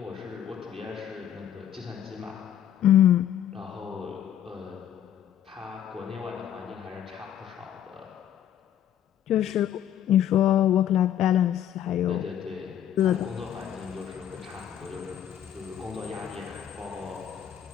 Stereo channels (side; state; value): right; quieter; 10.4 dB